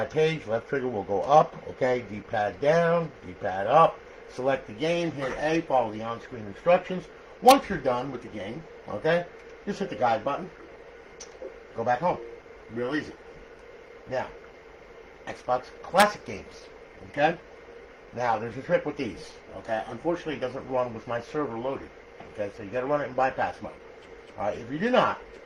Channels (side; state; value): both; identical; correlation 1.00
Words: page. Left trigger will go up. Okay, D-pad down, D-pad up. Select the game, hit A, follow the on-screen instructions. Once you're done with the game, okay, just hit the guide button. Go back home. Real easy. Now, Xbox Classic games. Okay? Now, there's a trick with these. Okay? Unfortunately, it doesn't run with my server loaded. Okay? So you got to run it in bypass mode. Alright, if you do not,